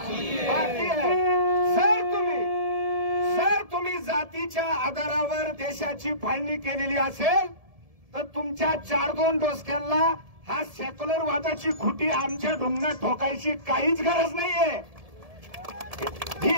है. सर तुम्ही जातीच्या आधारावर देशाची फाळणी केलेली असेल तर तुमच्या 4-2 डोसक्यांना हा सेक्युलरवादाची खुटी आमच्या ढुंगणात ठोकायची काहीच गरज नाहीये.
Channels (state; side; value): late; left; 1.7 ms